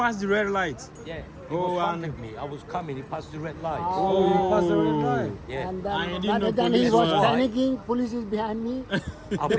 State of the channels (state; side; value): identical; both; correlation 1.00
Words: the red light. Yeah. He Oh, was and- front of me. I was coming. He passed the red lights. Oh, you passed the red light. Yeah. And I then, didn't know then he police was were- panicking. Police is behind me. I